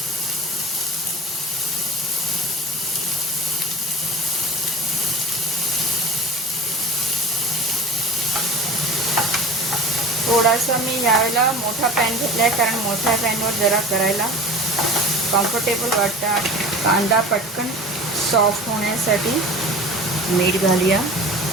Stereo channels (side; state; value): both; normal; correlation 0.37